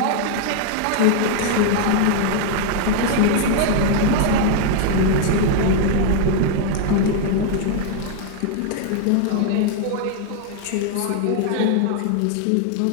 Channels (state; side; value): different; both; correlation 0.00